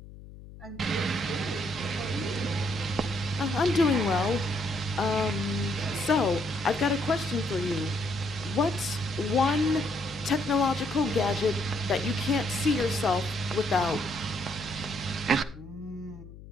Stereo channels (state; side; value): noise; left; hum, 16 dB below the sound